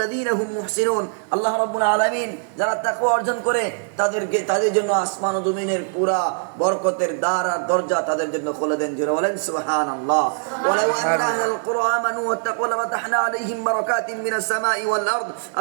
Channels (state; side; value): silent; left; 58 dB below the other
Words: হুম মুহসিনুন, আল্লাহ রাব্বুল আলামিন যারা তাকওয়া অর্জন করে তাদের জন্য আসমান ও জমিনের পুরা বরকতের দ্বার আর দরজা তাদের জন্য খুলে দেন। জোরে বলেন সুবহানাল্লাহ। ওয়ালাউ আন্না আহলাল কুরআ আমানু ওয়াত্তাকু লাফাতাহনা আলাইহিম বারাকাতিন মিনাস সামাই ওয়াল আরদ,